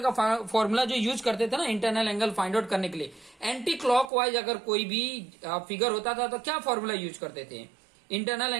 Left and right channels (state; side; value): drops out; left; at 4.1 s